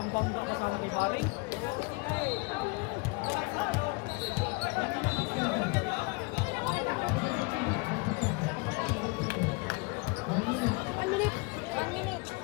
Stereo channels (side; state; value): right; quieter; 28.1 dB